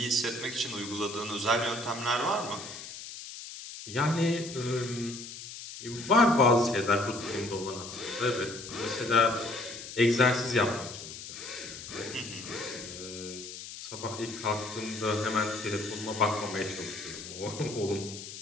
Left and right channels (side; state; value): left; noise; hiss, 11 dB below the sound